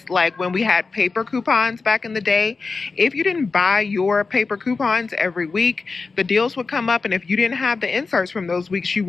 like when we had paper coupons back in the day. If you didn't buy your paper coupons every week, the deals would come up, and if you didn't have the inserts from those weeks, you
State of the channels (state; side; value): quieter; right; 4.3 dB